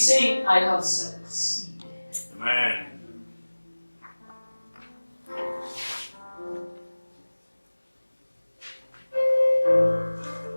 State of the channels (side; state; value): both; inverted; correlation -1.00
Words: saying, I have succeeded. Amen.